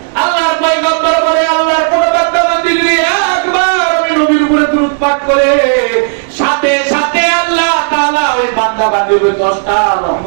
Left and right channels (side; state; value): left; silent; digital silence